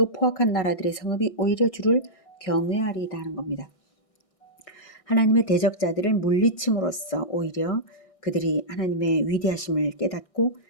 포악한 나라들의 성읍이 오히려 주를 경외하리다 하는 겁니다. 하나님의 대적자들을 물리침으로써 오히려 그들이 하나님의 위대하심을 깨닫고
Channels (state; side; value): late; right; 1.6 ms